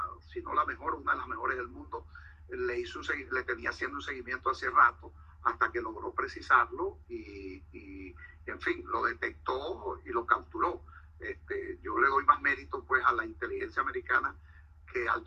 si no la mejor, una de las mejores del mundo, le tenía haciendo un seguimiento hace rato hasta que logró precisarlo y en fin, lo detectó y lo capturó. Yo le doy más mérito pues a la inteligencia americana que al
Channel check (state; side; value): identical; both; correlation 1.00